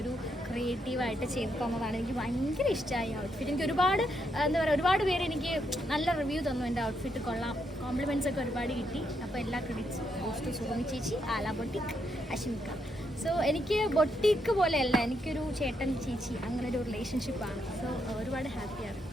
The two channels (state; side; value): normal; both; correlation 0.78